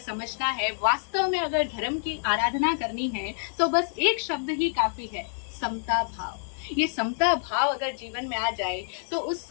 समझना है, वास्तव में अगर धर्म की आराधना करनी है तो बस एक शब्द ही काफी है, समता भाव। ये समता भाव अगर जीवन में आ जाए तो उस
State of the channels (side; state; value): right; silent; digital silence